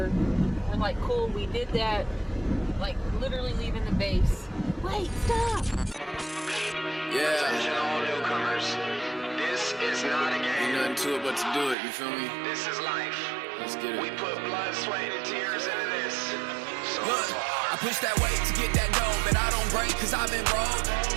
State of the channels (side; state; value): left; drops out; at 11.8 s